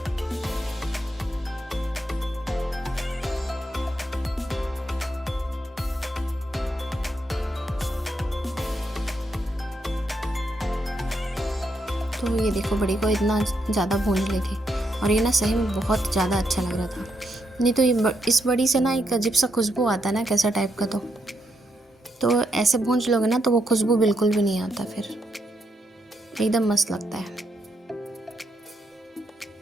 तो ये देखो बड़ी को इतना ज़्यादा भूंज ली थी, और ये ना सही में बहुत ज़्यादा अच्छा लग रहा था। नहीं तो ये इस बड़ी से ना एक अजीब सा खुशबू आता है ना, कैसा टाइप का। तो ऐसे भूंज लोगे ना तो वो खुशबू बिल्कुल भी नहीं आता, फिर एकदम मस्त लगता है।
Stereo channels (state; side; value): normal; both; correlation 0.80